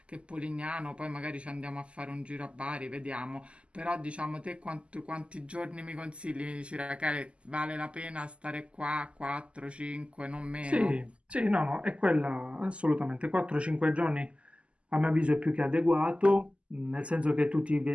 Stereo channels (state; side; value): late; left; 0.055 ms